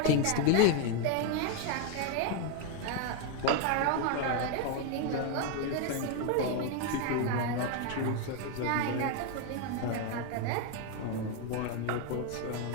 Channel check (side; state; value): both; different; correlation 0.01